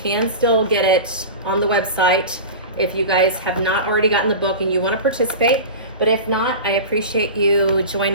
still get it on the website if you guys have not already gotten the book and you want to participate. But if not, I appreciate you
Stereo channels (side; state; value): both; inverted; correlation -0.30